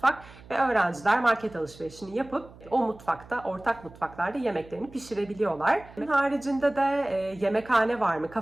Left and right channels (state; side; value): noise; right; hum, 21 dB below the sound